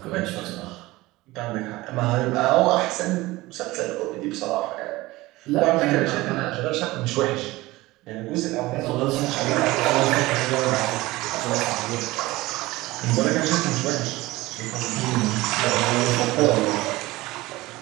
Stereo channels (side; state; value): left; quieter; 19.5 dB